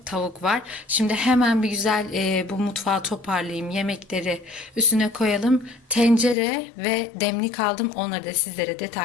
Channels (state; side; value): drops out; right; at 6.4 s